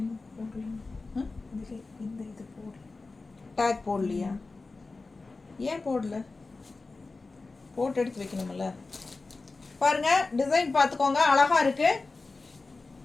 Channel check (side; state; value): right; quieter; 3.7 dB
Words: இந்த இது போடல, டேக் போடலையா? ஏன் போடல? போட்டு எடுத்து வைக்கணும்ல. பாருங்க, டிசைன் பார்த்துக்கோங்க, அழகா இருக்கு.